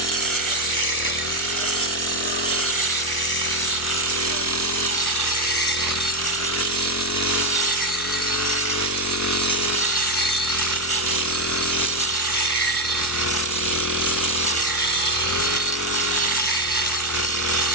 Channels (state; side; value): normal; both; correlation 0.07